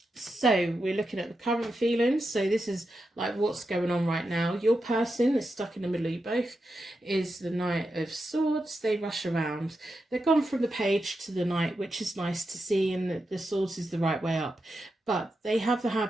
So we're looking at the current feelings. So this is like what's going on right now. Your person that's stuck in the middle of you both is the Knight of Swords. They rush around. They've gone from the Page to the Knight, which is nice to see, and the Swords is the right way up. But they have the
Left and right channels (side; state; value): both; normal; correlation 0.88